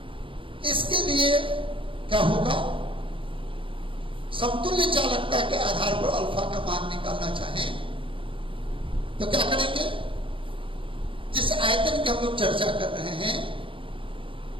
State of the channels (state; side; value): late; left; 0.25 ms